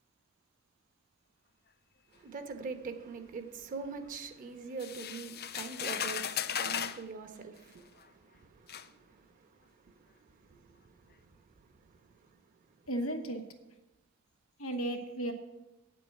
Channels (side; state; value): both; normal; correlation 0.09